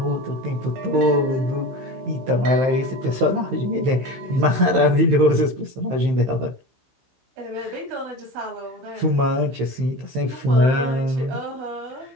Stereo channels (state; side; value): late; left; 15 ms